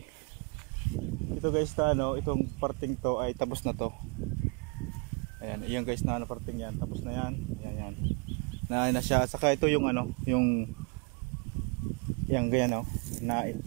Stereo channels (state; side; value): quieter; left; 33.2 dB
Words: ito guys na ano, itong parting to ay tapos na to. Ayan, iyan guys na ano, parting yan, tapos na yan. Ayan, yan. Na siya. Saka ito yung ano, yung yan ganyan o, na